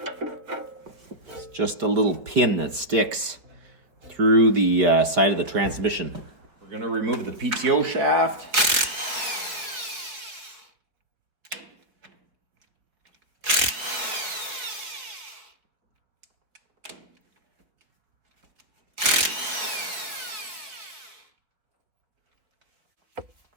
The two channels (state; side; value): late; left; 4.5 ms